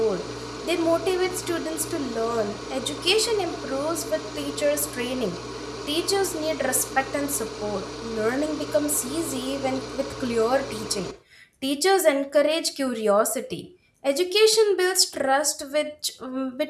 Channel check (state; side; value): identical; both; correlation 1.00